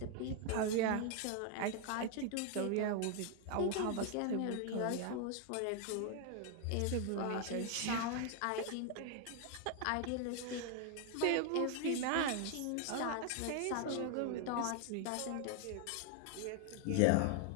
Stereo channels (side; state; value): both; different; correlation 0.00